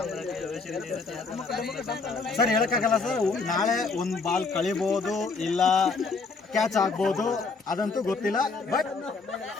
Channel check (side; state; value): right; quieter; 4.3 dB